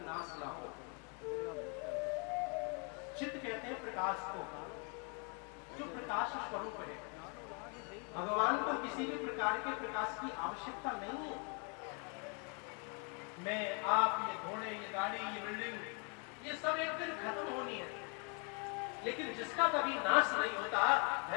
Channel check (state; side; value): quieter; right; 36.4 dB